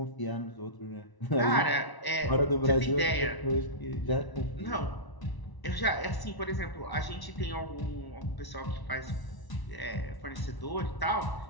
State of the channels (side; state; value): right; late; 1.0 ms